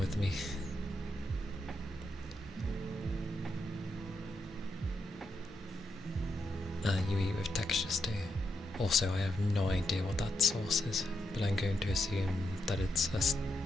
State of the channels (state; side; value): normal; both; correlation 0.83